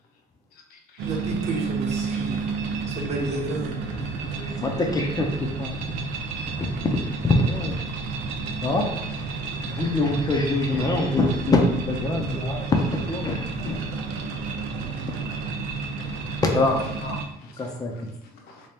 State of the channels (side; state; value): both; normal; correlation 0.54